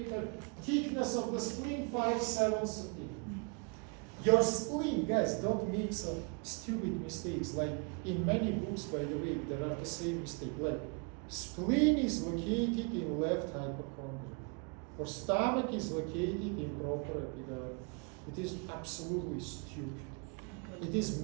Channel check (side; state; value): left; quieter; 35.6 dB